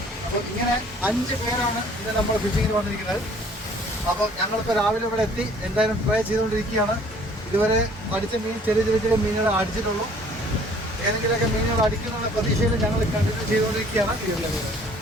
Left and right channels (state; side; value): normal; both; correlation 0.56